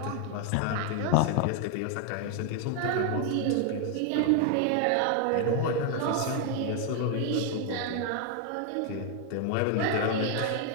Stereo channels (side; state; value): both; different; correlation 0.01